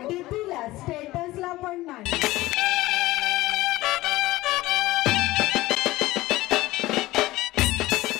डीपीला स्टेटसला पण नाही।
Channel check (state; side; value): quieter; right; 18.0 dB